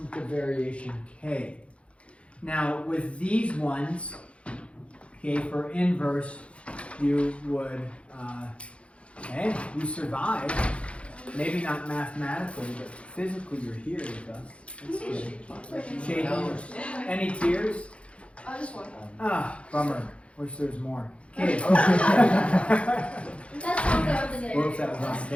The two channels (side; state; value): right; late; 0.061 ms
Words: of variation k. Now, with these ones, okay, for inverse, you would, okay, you survived. Maybe not mathematically, but physically you're here with us. That's good. Shaking. Any tears? Just one. Ah, bummer. Wish there was more. Okay. That's all there was. Whoops, that was on